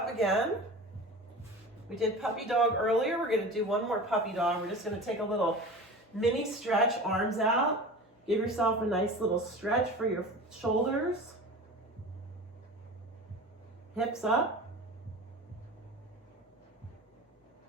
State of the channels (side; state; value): both; normal; correlation 0.34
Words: again. We did puppy dog earlier. We're going to do one more puppy dog. We're just going to take a little mini stretch, arms out. Give yourself a nice little stretch for your shoulders. Hips up.